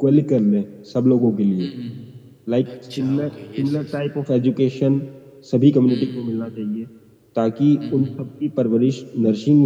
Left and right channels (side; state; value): both; identical; correlation 1.00